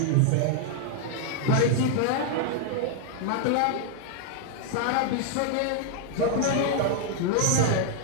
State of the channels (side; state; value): both; different; correlation 0.00